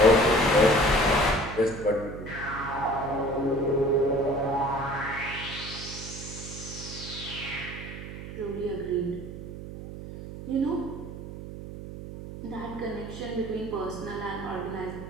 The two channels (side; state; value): right; noise; hum, 10 dB below the sound